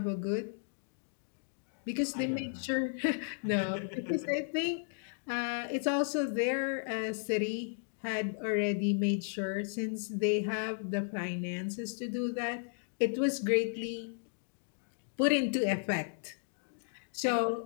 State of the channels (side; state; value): right; silent; digital silence